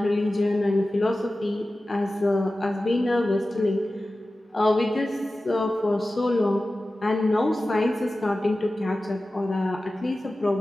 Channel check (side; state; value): both; normal; correlation 0.95